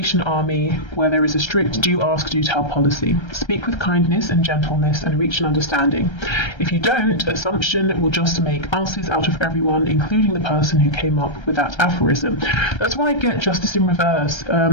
army, where there is a strict do ask, do tell policy. Speak with kindness and gentleness and reach an understanding. If you don't, assumption will just make asses out of everyone, including the person who came up with that aphorism. That's why I get justice in reverse.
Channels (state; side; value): late; right; 1.3 ms